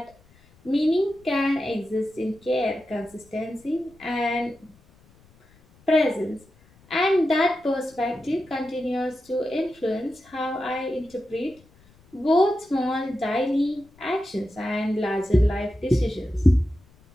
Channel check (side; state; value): left; noise; rumble, 29 dB below the sound